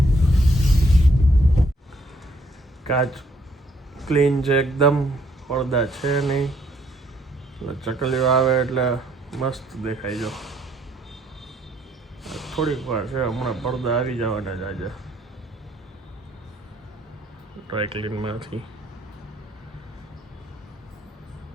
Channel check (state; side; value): normal; both; correlation 0.68